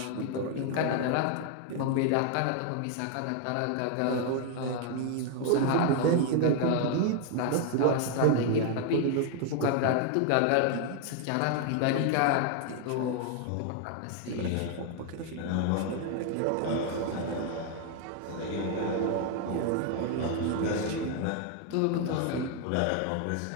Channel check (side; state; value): both; different; correlation 0.00